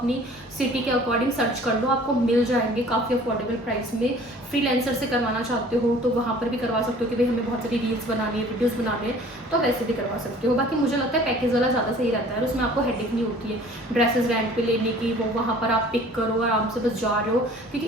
सिटी के अकॉर्डिंग सर्च कर लो, आपको मिल जाएंगे काफ़ी अफोर्डेबल प्राइस में। फ्रीलांसर से करवाना चाहते हो तो वहाँ पर भी करवा सकते हो कि भाई हमें बहुत सारी रील्स बनानी है, वीडियोज़ बनाने हैं, तो वैसे भी करवा सकते हो। बाकी मुझे लगता है पैकेज वाला ज़्यादा सही रहता है, उसमें आपको हेडेक नहीं होती है ड्रेसेस रेंट पे लेने की। वो वहाँ पर आप पिक करो, आराम से बस जा रहे हो, क्योंकि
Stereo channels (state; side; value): normal; both; correlation 0.50